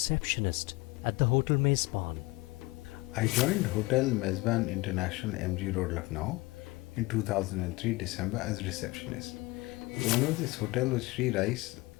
at the Hotel Mezban. I joined Hotel Mezban International, MG Road, Lucknow in 2003 December as receptionist. The owner of this hotel was Sri Rais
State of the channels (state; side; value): quieter; right; 22.3 dB